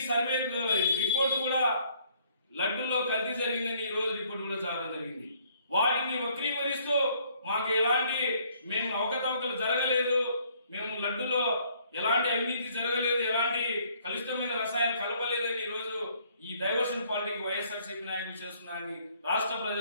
సర్వే రిపోర్టు కూడా లడ్డూలో కల్తీ జరిగిందని ఈ రోజు రిపోర్టు కూడా రావడం జరిగింది. వాటిని వక్రీకరిస్తూ మాకు మేము అవకతవకలు జరగలేదు, మేము లడ్డూలో ఎలాంటి అవినీతి జరగలేదు, ఎలాంటి కలుషితమైన రసాయనాలు కలపలేదని ఈరోజు ఈ డైవర్షన్ పాలిటిక్స్ వైఎస్ఆర్సీపీ నాయకులు చేస్తున్నారని రాష్ట్ర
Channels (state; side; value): inverted; both; correlation -0.64